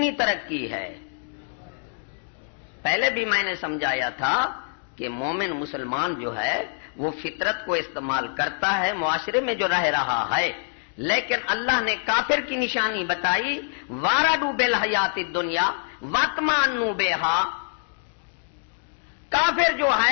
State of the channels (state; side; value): silent; right; digital silence